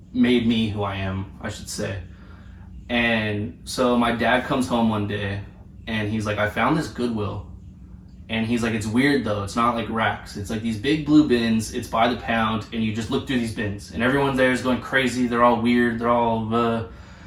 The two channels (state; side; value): identical; both; correlation 1.00